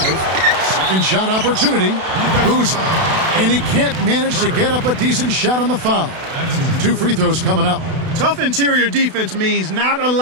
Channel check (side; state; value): left; late; 32 ms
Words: Second shot opportunity. Boozer. And he can't manage to get up a decent shot on the foul. 2 free throws coming up. Tough interior defense means not